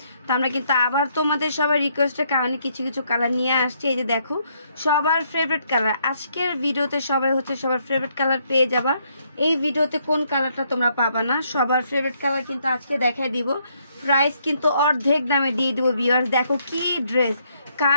তো আমরা কিন্তু আবার তোমাদের সবার রিকোয়েস্টের কারণে কিছু কিছু কালার নিয়ে আসছি। এই যে দেখো সবার ফেভারিট কালার, আজকের ভিডিওতে সবাই হচ্ছে সবার ফেভারিট কালার পেয়ে যাবা। এই ভিডিওতে কোন কালারটা তোমরা পাবা না, সবার ফেভারিট কালার কিন্তু আজকে দেখাই দিব। প্রাইস কিন্তু অর্ধেক দামে দিয়ে দিব ভিউয়ার্স। দেখো কি ড্রেস,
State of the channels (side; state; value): both; inverted; correlation -0.72